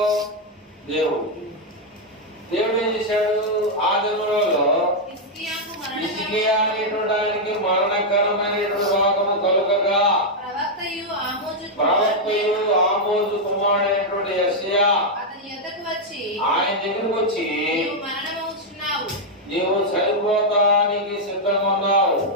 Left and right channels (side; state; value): both; normal; correlation -0.02